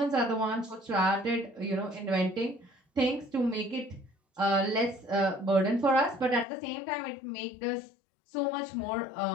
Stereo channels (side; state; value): right; drops out; at 6.5 s